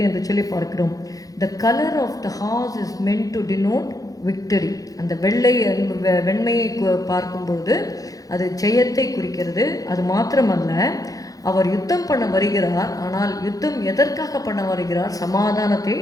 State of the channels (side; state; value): right; late; 0.17 ms